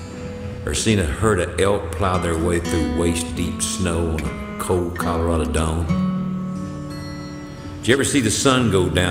Or seen a herd of elk plow their way through waist-deep snow on a cold Colorado dawn? Did you ever see the sun go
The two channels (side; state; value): both; identical; correlation 1.00